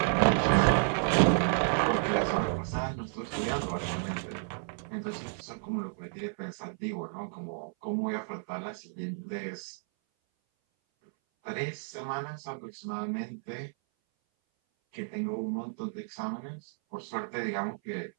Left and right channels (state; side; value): silent; left; 57 dB below the other